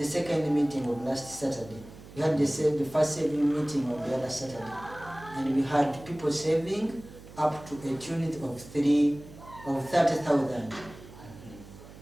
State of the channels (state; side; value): noise; right; hum, 18 dB below the sound